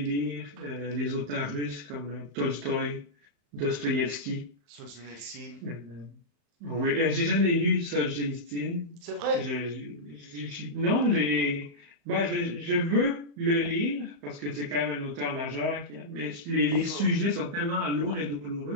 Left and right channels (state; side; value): late; left; 35 ms